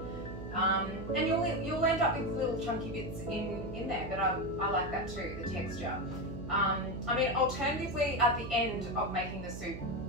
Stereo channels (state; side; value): noise; right; hum, 9 dB below the sound